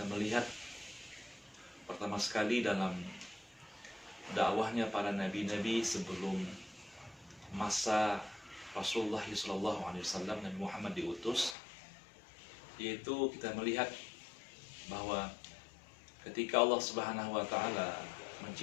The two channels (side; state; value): right; drops out; at 11.6 s